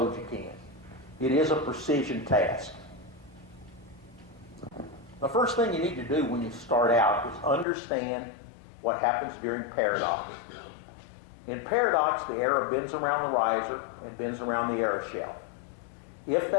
you can. It is a precision task. The first thing you need to do when you start out is understand what happens during paradox. In paradox, the arrow bends around the riser and bends around the arrow shaft. If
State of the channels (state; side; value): drops out; right; at 7.7 s